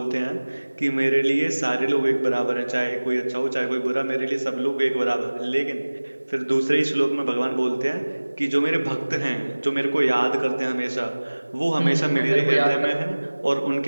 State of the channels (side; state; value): both; inverted; correlation -1.00